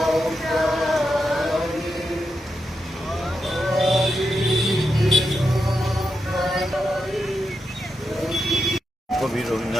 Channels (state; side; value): normal; both; correlation 0.86